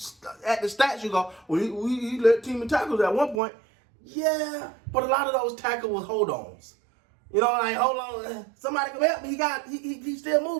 the stats, you go, well, he led team in tackles at one point. Yeah, but a lot of those tackles was hold-ons. You know, like, hold on, somebody come help me. He's still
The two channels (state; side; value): drops out; left; at 3.4 s